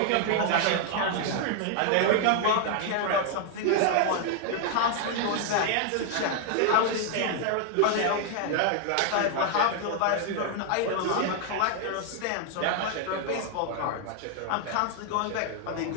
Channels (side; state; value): both; different; correlation 0.00